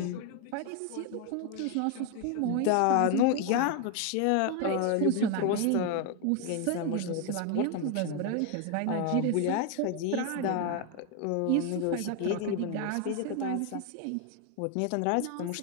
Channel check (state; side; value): different; both; correlation 0.01